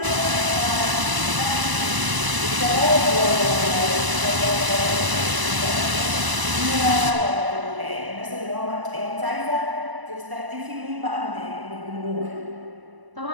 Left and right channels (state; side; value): late; left; 1.0 ms